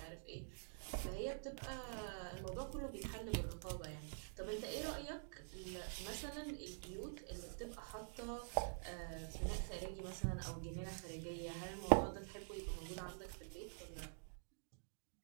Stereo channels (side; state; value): left; silent; digital silence